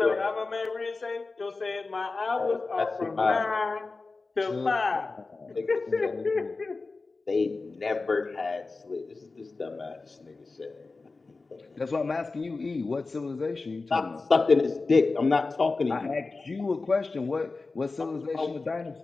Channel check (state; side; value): quieter; right; 3.8 dB